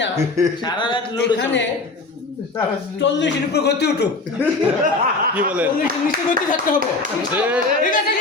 না সারা রাত এখানে 40-এর উপর গতি উঠুক। কি বলেন 40-এর নিচে গতি থাকতে হবে, ঠিক আছে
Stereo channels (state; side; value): quieter; right; 3.5 dB